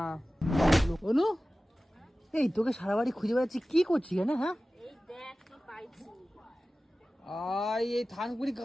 অনু, এই তোকে সারা বাড়ি খুঁজে বেড়াচ্ছি, কি করছিস কেন? হ্যাঁ এই দেখ কি পাইছি এই থানকুনি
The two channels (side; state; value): both; normal; correlation 0.96